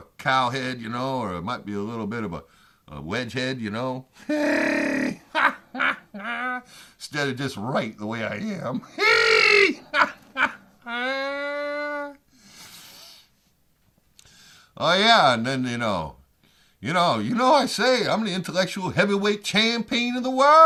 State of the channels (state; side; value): identical; both; correlation 1.00